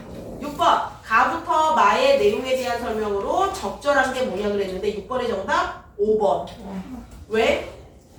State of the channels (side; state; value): both; identical; correlation 1.00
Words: 6번. 가부터 마의 내용에 대한 설명으로 적절한 게 뭐냐 그랬는데 6번의 정답 5번. 왜?